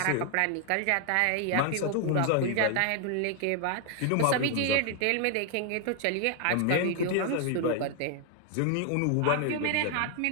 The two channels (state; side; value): different; both; correlation 0.00